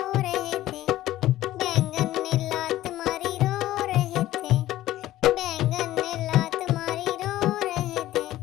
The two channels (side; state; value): right; quieter; 14.8 dB